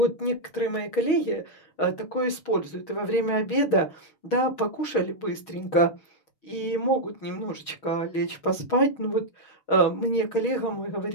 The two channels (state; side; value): late; right; 6.3 ms